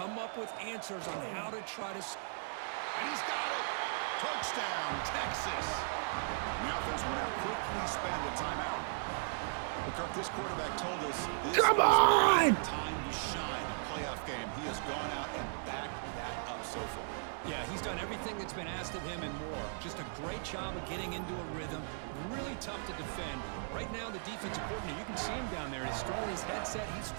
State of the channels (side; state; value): left; silent; digital silence